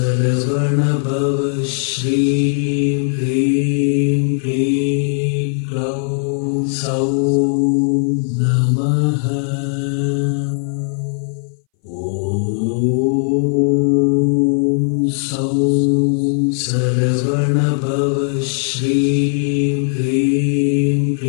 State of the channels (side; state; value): right; silent; 63 dB below the other